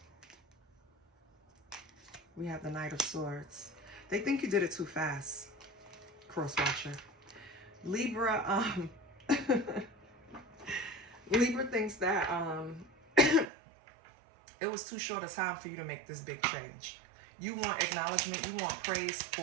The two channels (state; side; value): drops out; left; at 13.5 s